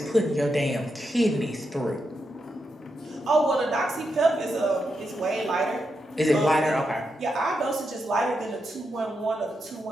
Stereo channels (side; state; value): both; normal; correlation 0.85